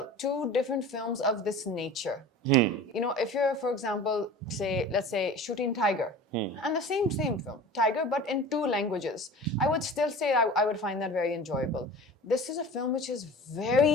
Two different films of this nature. You know, if you're, for example, let's say shooting Tiger, and the same film, Tiger, but in two languages, I would still say I would find that very enjoyable. This is a film which is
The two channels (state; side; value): normal; both; correlation 0.39